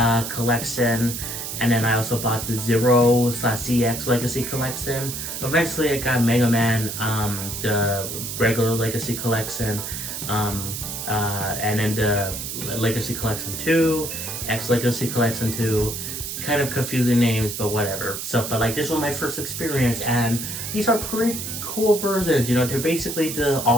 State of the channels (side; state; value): right; noise; hiss, 6 dB below the sound